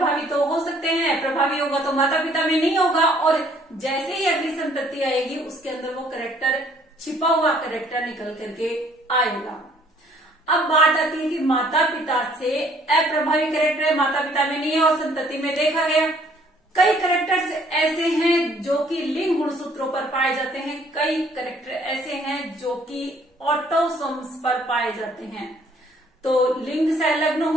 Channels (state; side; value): normal; both; correlation 0.61